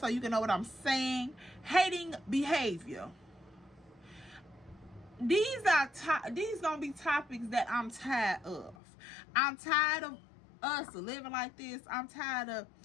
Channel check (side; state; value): right; drops out; at 8.8 s